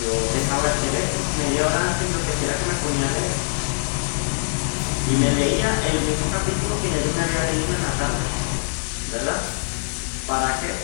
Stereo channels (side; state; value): right; silent; 57 dB below the other